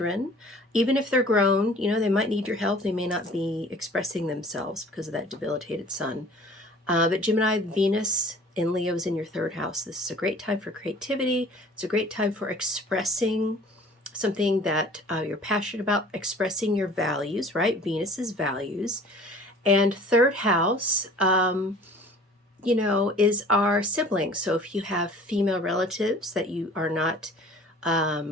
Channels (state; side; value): normal; both; correlation 0.48